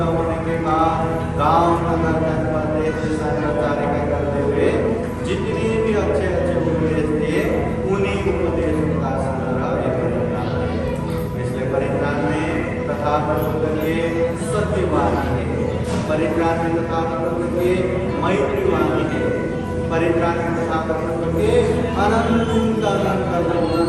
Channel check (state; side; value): identical; both; correlation 1.00